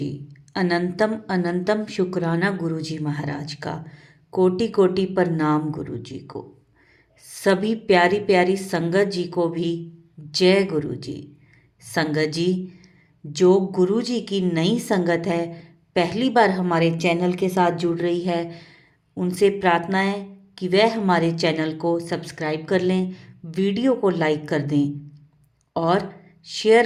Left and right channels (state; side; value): identical; both; correlation 1.00